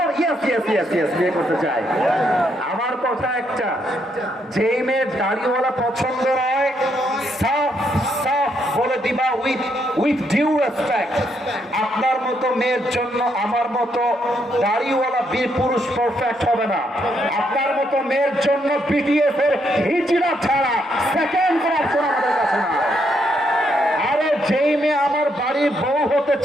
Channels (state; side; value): normal; both; correlation 0.76